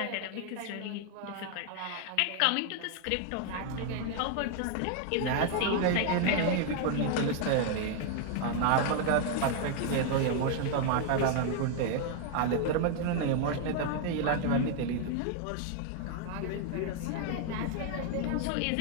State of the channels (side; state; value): both; different; correlation 0.00